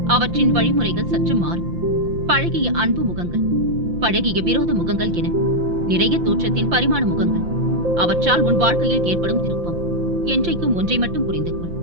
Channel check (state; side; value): late; left; 5.8 ms